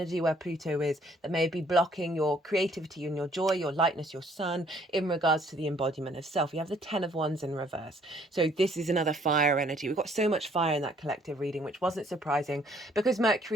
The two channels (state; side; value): normal; both; correlation 0.62